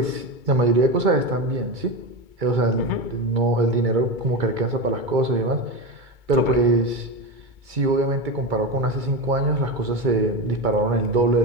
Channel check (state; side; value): late; left; 2.2 ms